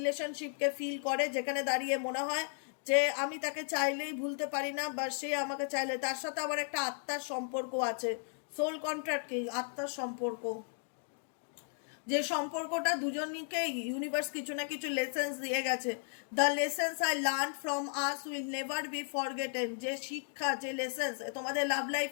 ফিল করে, যেখানে দাঁড়িয়ে মনে হয় যে আমি তাকে চাইলেই ভুলতে পারি না, বা সে আমাকে চাইলে, তার সাথে আবার একটা আত্মার সম্পর্ক আছে। সোল কন্ট্রাক্ট কি? আত্মার সম্পর্ক, যে সম্পর্কটা দুজনকে ইউনিভার্স কিছু না কিছু লেসেন্স দিয়ে গেছে। The lessons I learn from us will never be forgotten. যে শিক্ষা, যে লেসেন্স তোমাদের লাভ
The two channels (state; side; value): silent; right; 54 dB below the other